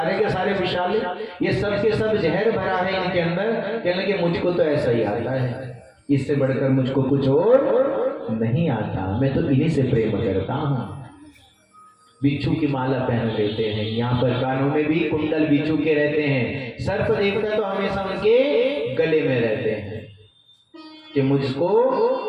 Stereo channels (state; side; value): identical; both; correlation 1.00